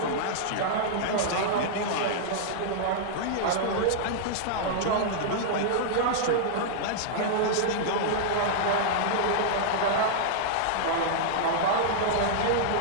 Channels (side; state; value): both; different; correlation -0.02